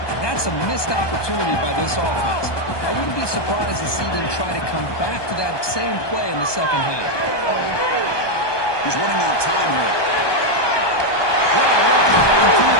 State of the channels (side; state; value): right; late; 1.2 ms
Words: that's a missed opportunity by this offense. I wouldn't be surprised to see them try to come back to that same play in the second half. He's running out of time here. Well,